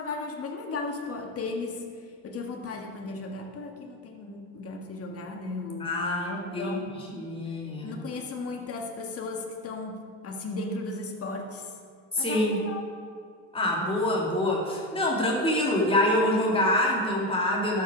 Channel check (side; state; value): both; normal; correlation 0.18